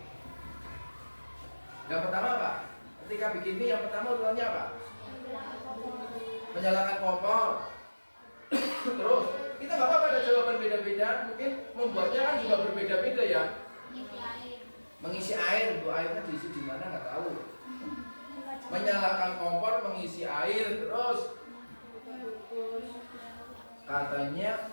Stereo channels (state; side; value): inverted; both; correlation -1.00